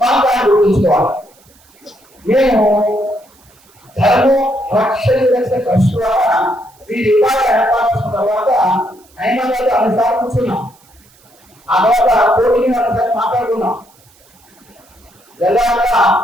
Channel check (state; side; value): noise; right; hiss, 30 dB below the sound